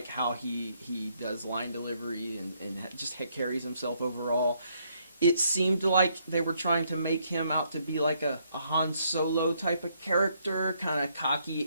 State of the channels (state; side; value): inverted; both; correlation -0.72